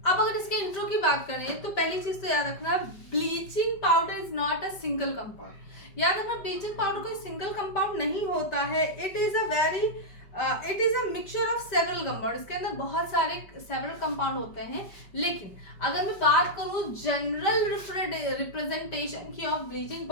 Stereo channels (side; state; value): right; late; 5.1 ms